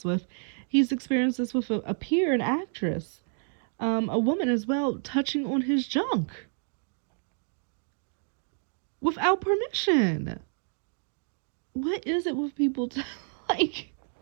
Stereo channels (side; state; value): left; silent; 58 dB below the other